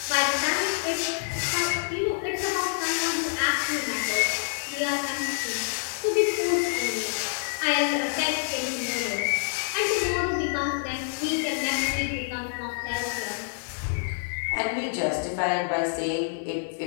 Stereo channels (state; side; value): silent; right; digital silence